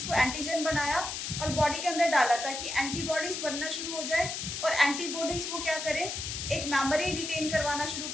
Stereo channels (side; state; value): left; noise; hiss, 5 dB below the sound